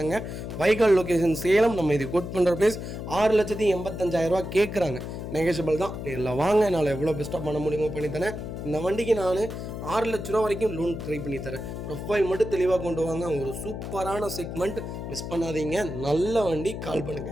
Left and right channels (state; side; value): noise; left; hum, 7 dB below the sound